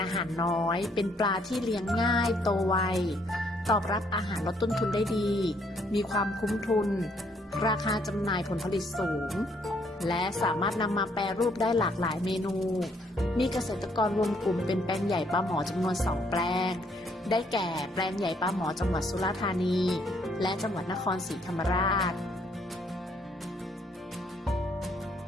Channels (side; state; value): both; normal; correlation 0.68